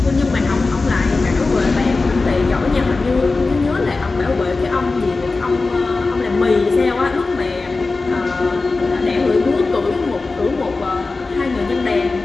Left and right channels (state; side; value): quieter; right; 3.7 dB